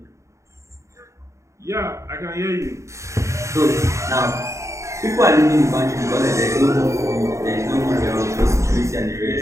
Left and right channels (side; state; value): left; late; 0.14 ms